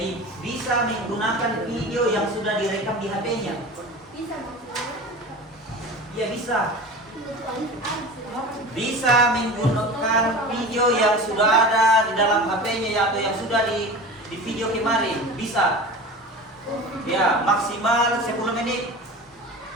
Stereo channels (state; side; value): normal; both; correlation 0.34